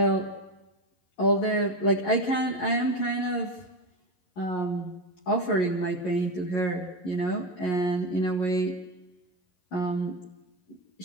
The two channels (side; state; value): right; late; 11 ms